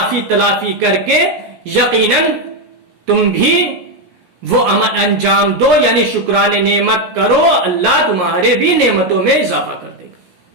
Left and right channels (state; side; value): late; left; 16 ms